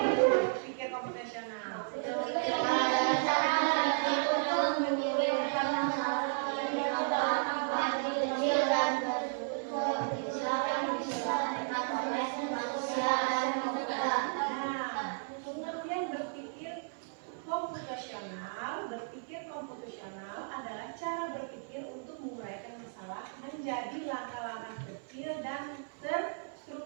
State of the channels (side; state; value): left; silent; 55 dB below the other